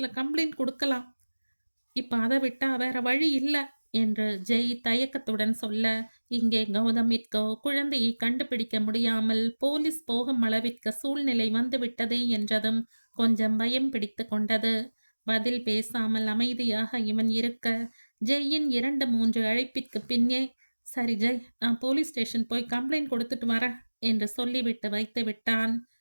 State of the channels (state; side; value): inverted; both; correlation -1.00